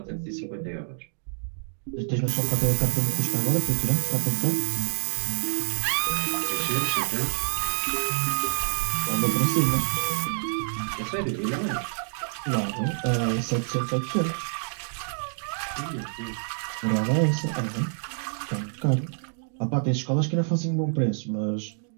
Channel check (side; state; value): left; silent; digital silence